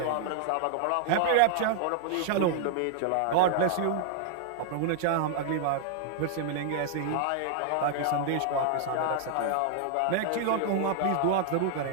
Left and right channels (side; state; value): both; different; correlation 0.00